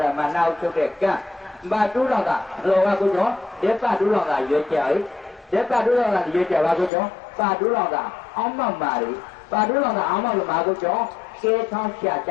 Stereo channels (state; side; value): drops out; right; at 6.9 s